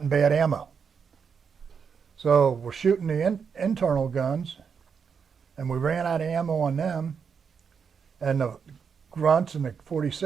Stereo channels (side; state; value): left; quieter; 6.4 dB